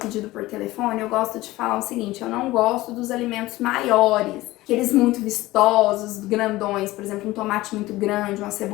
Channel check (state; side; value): quieter; right; 18.2 dB